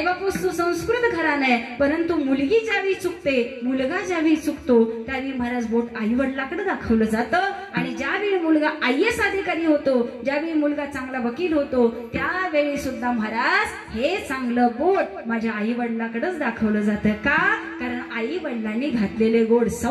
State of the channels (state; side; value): identical; both; correlation 1.00